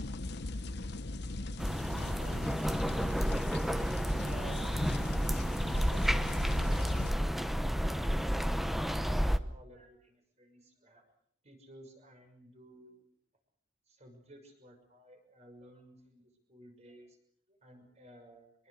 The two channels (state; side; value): normal; both; correlation 0.96